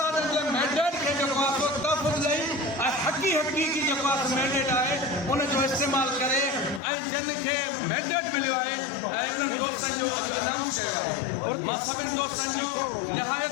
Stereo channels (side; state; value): right; drops out; at 6.8 s